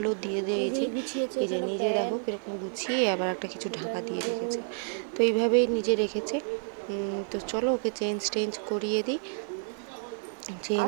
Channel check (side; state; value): left; silent; digital silence